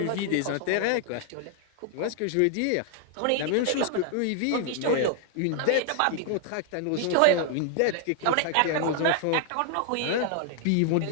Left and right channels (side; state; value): both; different; correlation 0.00